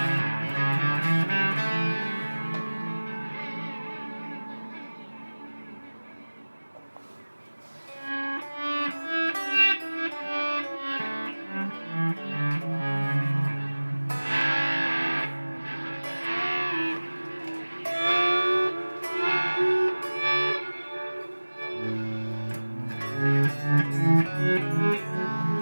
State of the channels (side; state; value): both; inverted; correlation -1.00